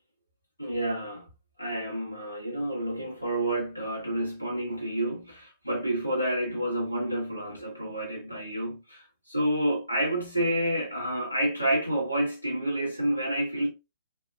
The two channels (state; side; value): inverted; both; correlation -0.76